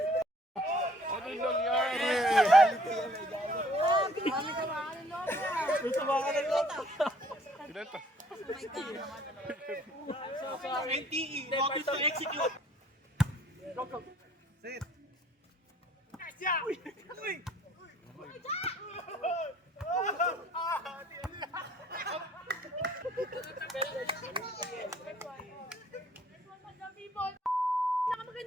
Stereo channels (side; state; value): both; normal; correlation 0.59